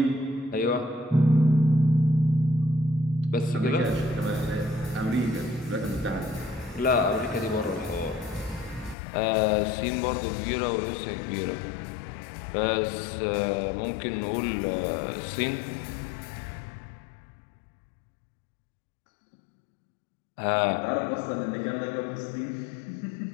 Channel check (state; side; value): drops out; right; at 9.0 s